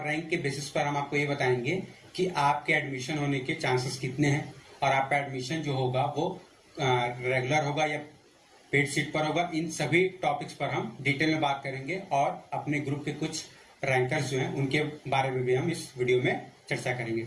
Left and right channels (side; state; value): both; identical; correlation 1.00